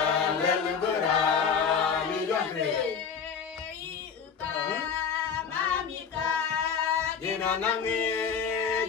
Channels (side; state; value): right; quieter; 6.6 dB